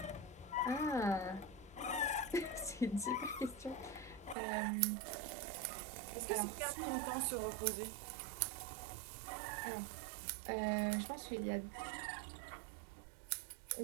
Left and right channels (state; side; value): drops out; left; at 4.4 s